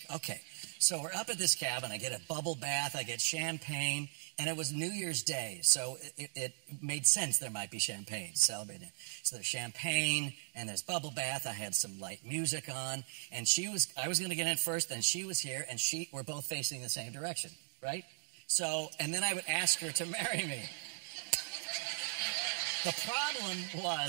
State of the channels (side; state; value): left; silent; digital silence